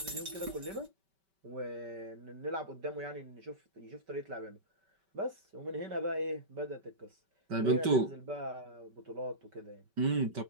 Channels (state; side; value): late; left; 5.2 ms